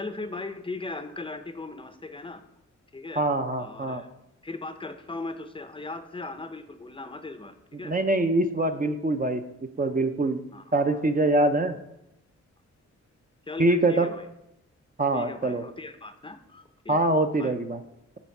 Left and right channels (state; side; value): normal; both; correlation 0.36